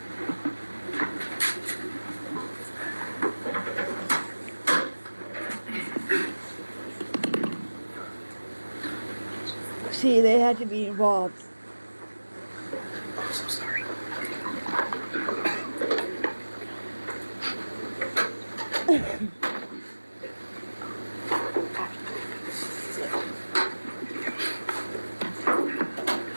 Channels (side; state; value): both; inverted; correlation -1.00